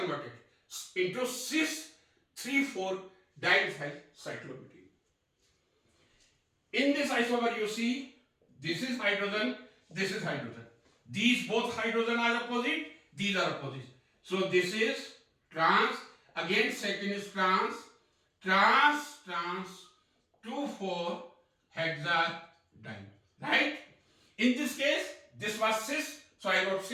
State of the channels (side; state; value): both; identical; correlation 1.00